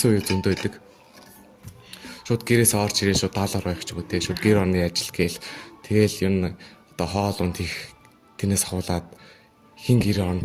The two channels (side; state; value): both; identical; correlation 1.00